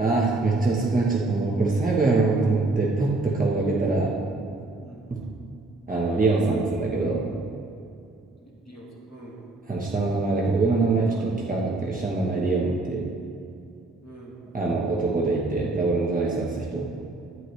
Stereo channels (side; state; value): left; quieter; 3.0 dB